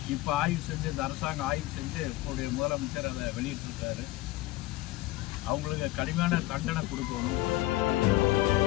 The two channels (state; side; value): quieter; right; 17.6 dB